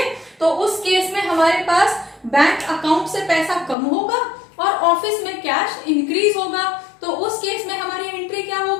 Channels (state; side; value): drops out; right; at 3.8 s